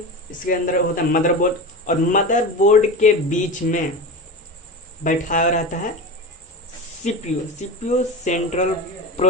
इसके अंदर होता है मदरबोर्ड, और मदरबोर्ड के बीच में बैठाया रहता है CPU. CPU central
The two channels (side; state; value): both; normal; correlation 0.25